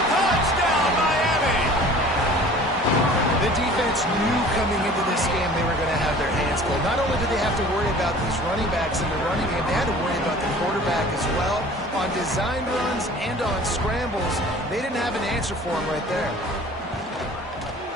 Touchdown, Miami. The defense knew coming into this game they were going to have their hands full. Not only did they have to worry about these running backs in the running game, they had to worry about the quarterback as well. On designed runs and on scrambles, they didn't have an answer for him right there.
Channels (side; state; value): both; normal; correlation 0.46